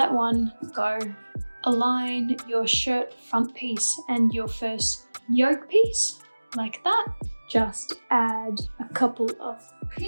one go. Align your shirt front piece and your first yoke piece like that. Just add a couple of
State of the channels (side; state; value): both; inverted; correlation -1.00